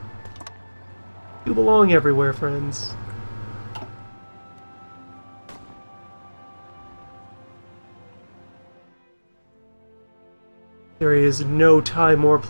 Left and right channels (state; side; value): inverted; both; correlation -1.00